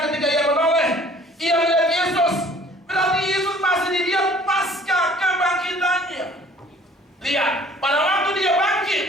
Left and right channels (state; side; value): normal; both; correlation 0.53